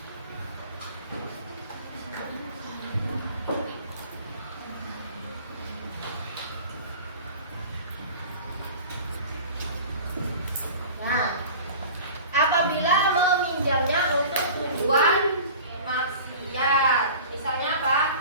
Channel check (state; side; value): inverted; both; correlation -0.40